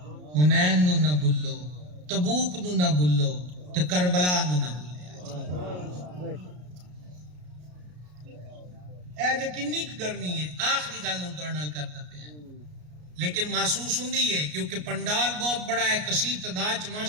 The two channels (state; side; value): late; left; 33 ms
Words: حنین نو نہ بھلو، تبوک نو نہ بھلو تے کربلا نو نہ بھلیا. اے جے کنی گرمی ہے. آخری گل نوں تہاڈے نال کردا پیا لیکن محسوس ہوندی ہے کیونکہ پنڈال بہت بڑا ہے، کثیر تعداد